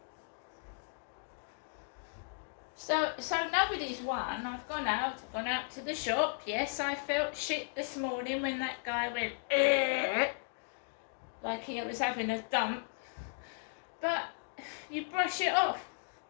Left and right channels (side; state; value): right; silent; digital silence